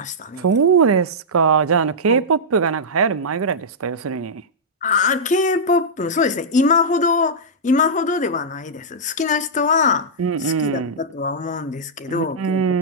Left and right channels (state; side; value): normal; both; correlation -0.11